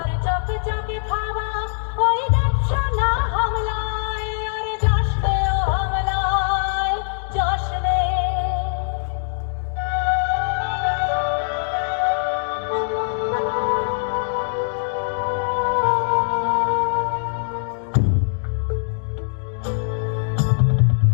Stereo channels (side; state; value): right; silent; digital silence